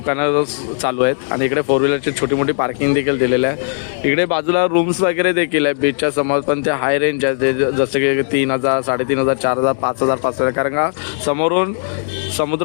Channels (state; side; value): silent; right; 68 dB below the other